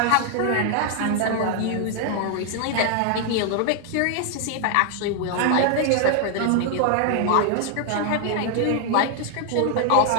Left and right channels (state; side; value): different; both; correlation 0.00